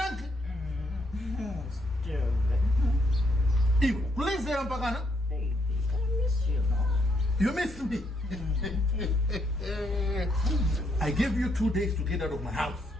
Ew, please say Ampagana. Baby, I miss you now. You missed me. I gave you 2 days to get out of my house.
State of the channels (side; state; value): both; normal; correlation 0.75